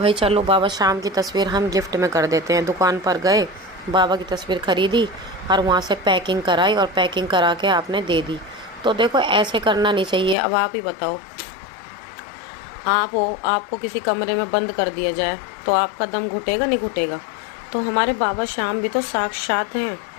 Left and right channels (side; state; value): right; drops out; at 10.4 s